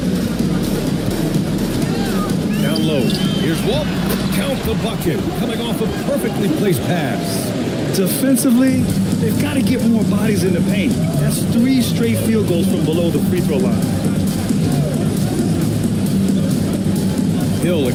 Down low. Here's Walt. Count the bucket. Coming off a perfectly placed pass. Defensively, they've got to get more bodies in the paint. That's 3 straight field goals from below the free throw line. Hill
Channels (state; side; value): identical; both; correlation 1.00